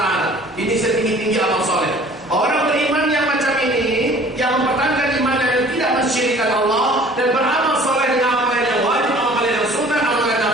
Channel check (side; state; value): both; normal; correlation 0.50